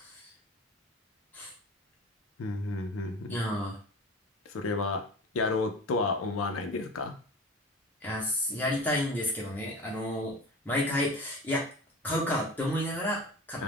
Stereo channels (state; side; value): normal; both; correlation 0.35